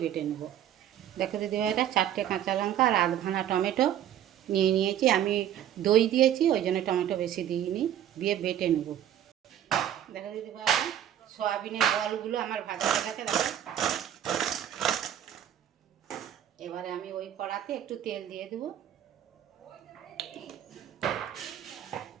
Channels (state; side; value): quieter; left; 10.7 dB